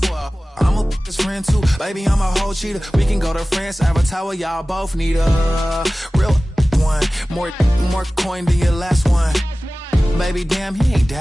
I'm a his friend too, baby, I'm a whole cheater. We can go to France, Avatar, y'all both need a real one. More coin than your last one. Baby, damn, he ain't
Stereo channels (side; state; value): both; normal; correlation 0.97